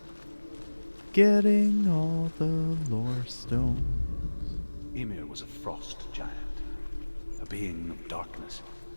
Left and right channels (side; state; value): both; inverted; correlation -1.00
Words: Getting all the lore stones. Ymir was a frost giant, a being of darkness,